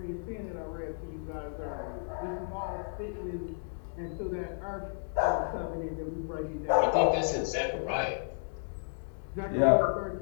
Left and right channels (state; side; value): silent; right; digital silence